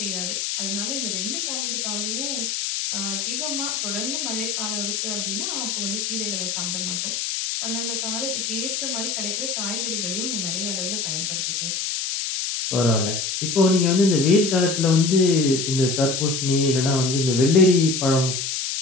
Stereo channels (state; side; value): noise; left; hiss, 2 dB below the sound